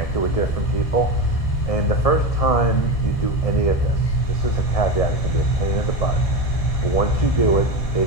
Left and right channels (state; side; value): late; right; 1.6 ms